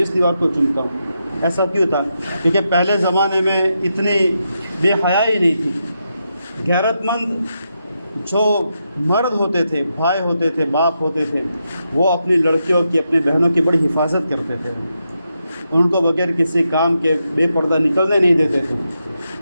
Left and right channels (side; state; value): both; inverted; correlation -0.85